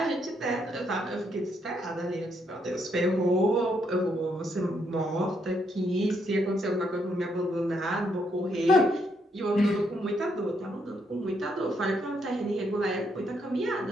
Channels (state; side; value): normal; both; correlation 0.75